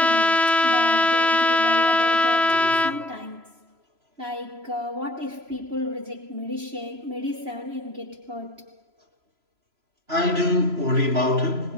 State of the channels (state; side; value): late; left; 3.0 ms